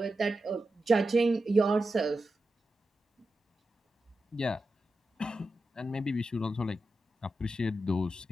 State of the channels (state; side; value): normal; both; correlation 0.90